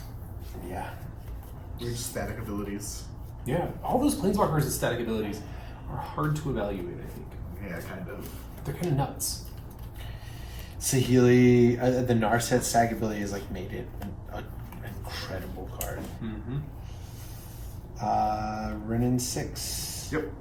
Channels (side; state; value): both; identical; correlation 1.00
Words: Yeah. Weird static abilities. Yeah, all those planeswalkers with static abilities are hard to evaluate, I think. Yeah, kind of. They're kind of nuts. Saheeli, the Narset stack ability has like made it an incredible card. Mm-hmm. Renin 6. Yep.